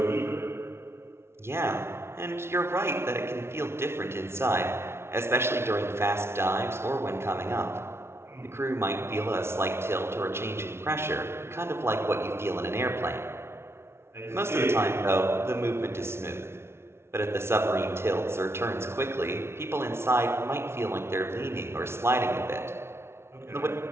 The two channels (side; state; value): left; late; 0.12 ms